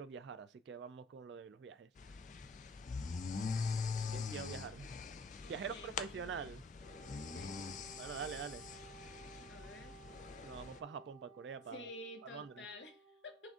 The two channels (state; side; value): normal; both; correlation 0.50